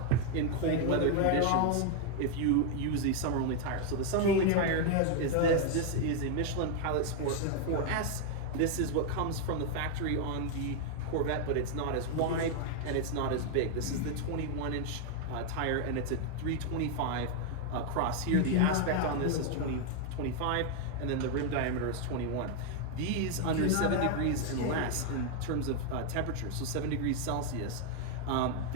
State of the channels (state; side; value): different; both; correlation 0.01